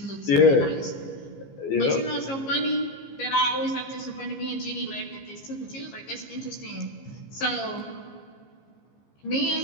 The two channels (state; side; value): late; right; 15 ms